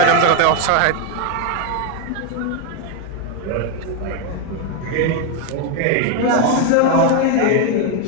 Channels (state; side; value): different; both; correlation 0.01